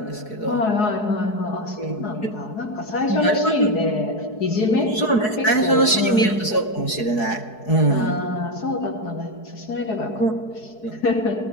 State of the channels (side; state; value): right; late; 4.7 ms